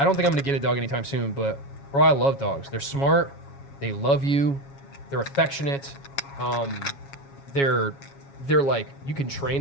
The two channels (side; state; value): right; late; 7.3 ms